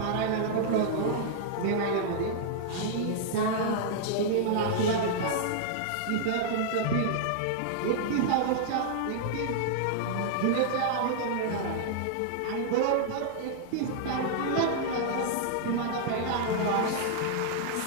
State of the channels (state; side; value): different; both; correlation -0.01